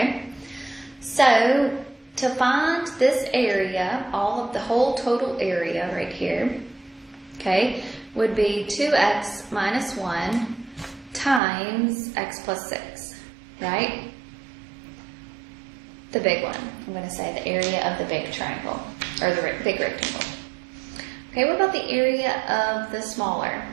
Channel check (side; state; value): left; drops out; at 11.4 s